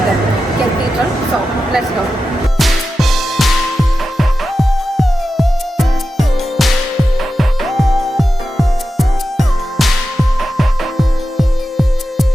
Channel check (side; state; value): both; normal; correlation 0.91